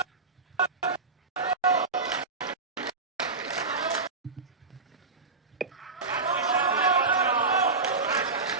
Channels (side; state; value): left; quieter; 4.1 dB